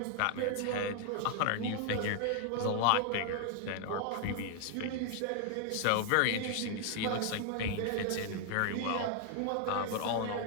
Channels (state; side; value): different; both; correlation 0.00